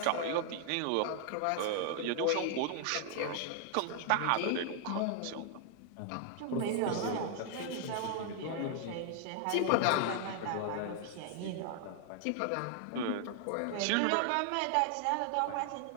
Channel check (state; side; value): different; both; correlation 0.00